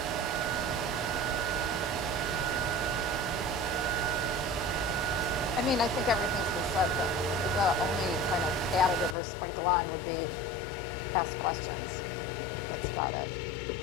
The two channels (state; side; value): drops out; right; at 9.2 s